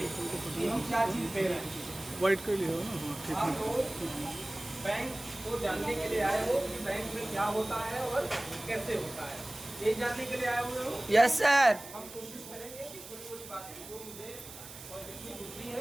कि हम क्या चीज़ दे रहे हैं। वाइट कर लिया हो ना? हाँ ठीक आप है। लोग बैंक को जानने के लिए आए हो कि बैंक में क्या होता है और कैसे होता है, ये जानने के लिए आए हुए हो। Yes sir. हम कोशिश करेंगे कि थोड़ी थोड़ी बातें जो मुझे और जितनी बुद्धि है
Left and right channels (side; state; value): right; noise; hiss, 14 dB below the sound